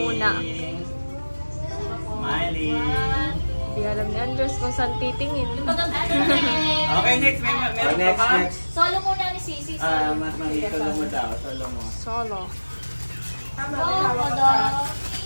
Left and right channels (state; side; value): inverted; both; correlation -1.00